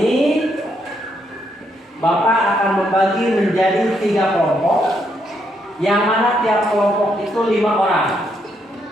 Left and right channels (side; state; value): both; normal; correlation 0.76